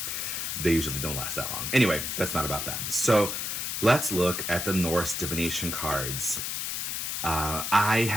they usually don't last that long. Anyway, that's not about that. So let's look at the Norse Divination cards. I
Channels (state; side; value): noise; left; hiss, 2 dB below the sound